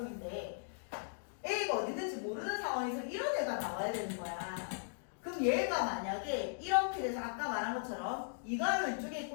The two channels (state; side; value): silent; right; digital silence